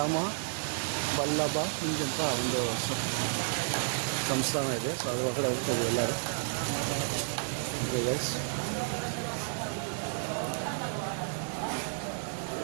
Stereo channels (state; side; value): silent; left; digital silence